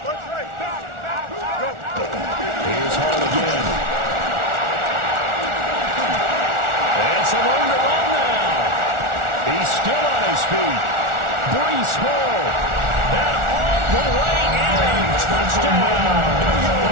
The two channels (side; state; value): left; late; 1.4 ms